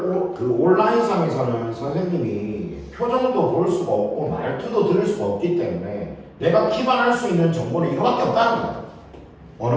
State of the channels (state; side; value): identical; both; correlation 1.00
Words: 선생님이 표정도 볼 수가 없고 말투도 들을 수가 없기 때문에 내가 기반할 수 있는 정보는 이거밖에 없다는 거야.